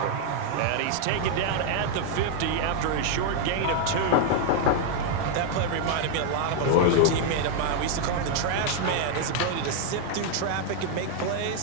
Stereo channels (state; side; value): different; both; correlation 0.00